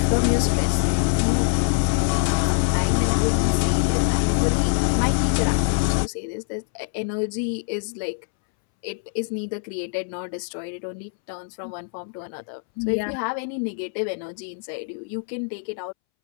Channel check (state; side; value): silent; right; 63 dB below the other